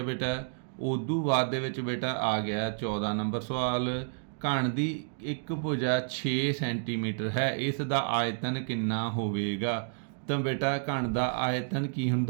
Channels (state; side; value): silent; left; digital silence